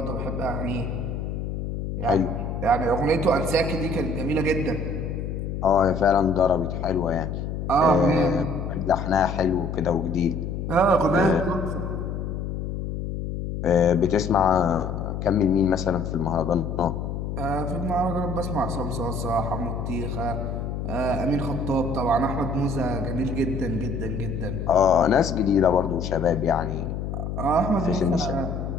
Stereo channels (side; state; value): left; noise; hum, 4 dB below the sound